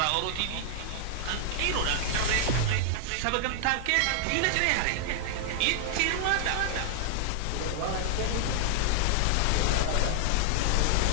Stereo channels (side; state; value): both; different; correlation 0.00